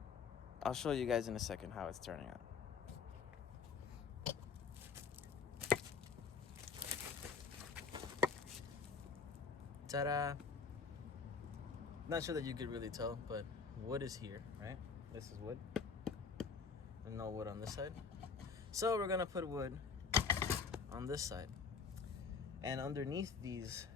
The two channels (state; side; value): quieter; right; 5.6 dB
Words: I'll show you guys in a second how it's turning out. Ta-da! Not sure that you could really tell, but wood is here, right? This is wood. And no wood on this side. So we're gonna put wood on this side. And underneath these